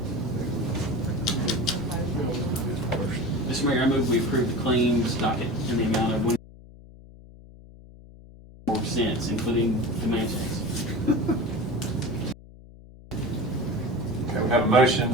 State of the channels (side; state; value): left; noise; hum, 20 dB below the sound